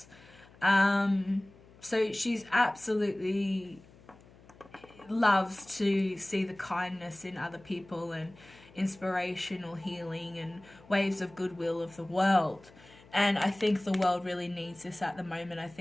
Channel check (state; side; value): noise; left; hum, 24 dB below the sound